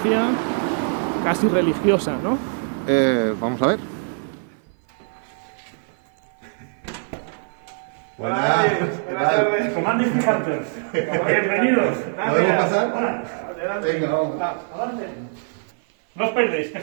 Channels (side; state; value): left; silent; 56 dB below the other